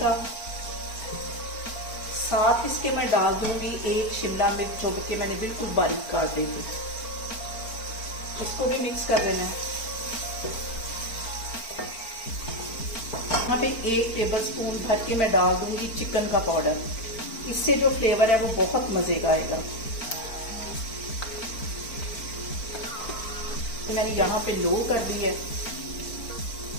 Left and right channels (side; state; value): right; late; 4.4 ms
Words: का। साथ इसके मैं डाल दूंगी 1 शिमला मिर्च जो कि मैंने बिल्कुल बारीक काट दी थी। इसको भी मिक्स कर लेना है। यहाँ पे 1 टेबलस्पून भर के मैं डाल दूंगी चिकन का पाउडर। इससे जो फ्लेवर है वो बहुत मजे का आएगा। तो मैंने यहाँ पे लो कर दी है।